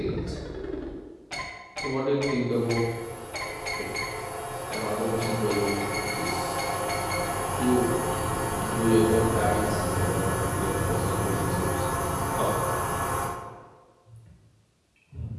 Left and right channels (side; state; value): both; identical; correlation 1.00